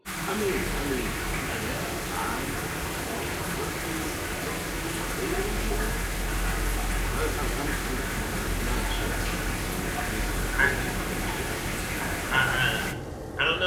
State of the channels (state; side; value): identical; both; correlation 1.00